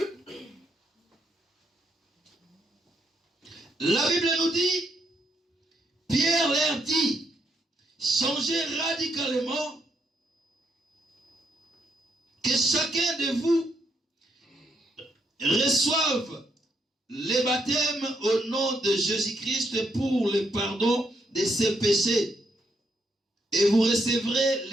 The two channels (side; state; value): both; normal; correlation 0.76